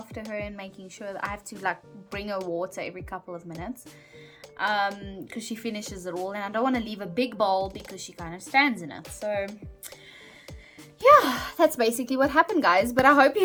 her and making sure that I have to like bring her water every couple of minutes, because she finishes it all, and I don't want to leave a big bowl because she kind of stands in it. So yeah, that's basically what happened, guys. But I hope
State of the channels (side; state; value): both; identical; correlation 1.00